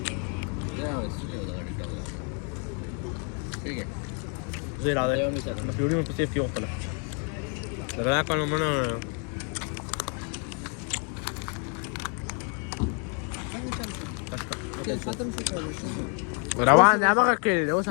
زي العادة ما في يوم بس في يوم طلع لا كانوا منا روان يا ما كده هو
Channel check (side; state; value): right; quieter; 39.8 dB